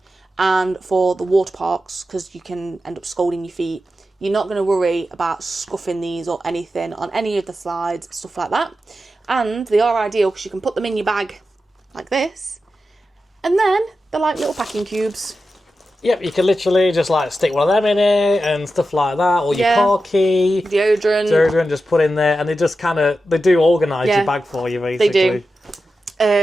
And for the water parks, because you can end up scalding your feet, you're not going to worry about scuffing these or anything on any of the slides, stuff like that. And they are ideal because you can put them in your bag like this, and then they're like little packing cubes. Yep, you can literally just like stick one of them in it and stuff like that, or your car key, deodorant, just put in there, and they just they do organise your bag for you basically.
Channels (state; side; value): normal; both; correlation 0.91